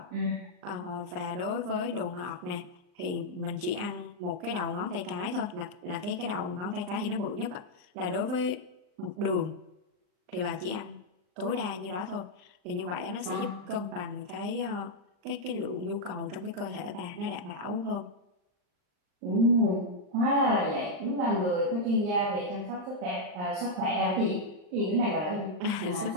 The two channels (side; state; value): left; late; 39 ms